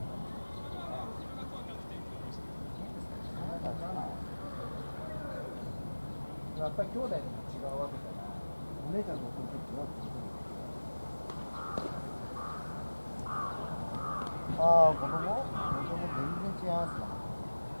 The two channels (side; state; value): both; inverted; correlation -1.00